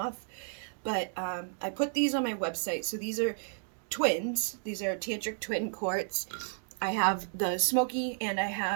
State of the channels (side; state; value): left; silent; digital silence